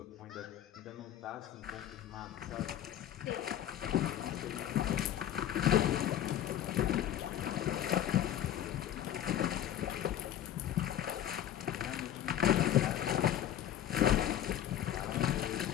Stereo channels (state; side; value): quieter; right; 11.3 dB